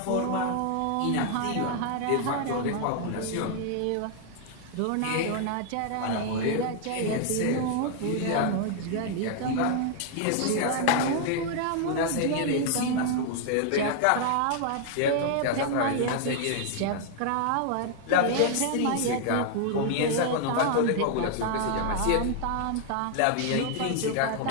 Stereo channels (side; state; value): both; different; correlation 0.00